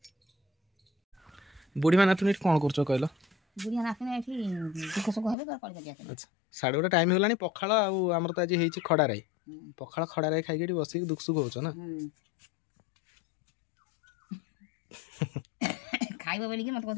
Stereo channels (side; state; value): right; drops out; at 5.4 s